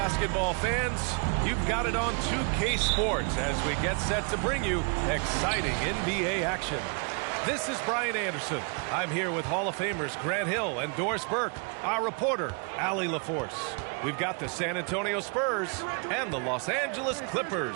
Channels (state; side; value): quieter; left; 36.8 dB